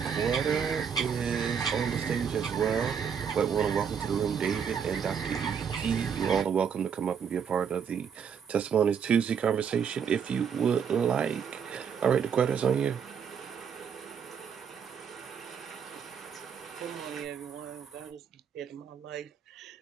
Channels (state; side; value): quieter; left; 7.2 dB